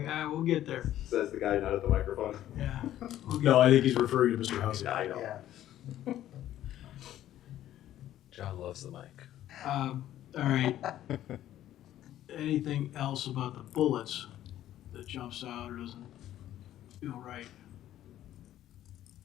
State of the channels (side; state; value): right; quieter; 12.6 dB